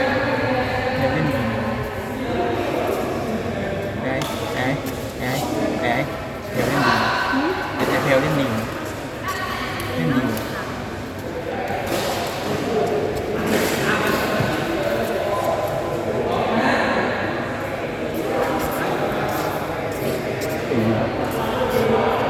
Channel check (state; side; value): identical; both; correlation 1.00